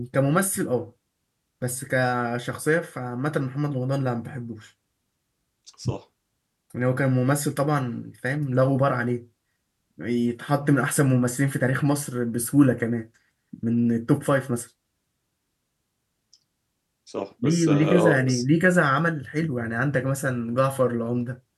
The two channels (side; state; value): both; identical; correlation 1.00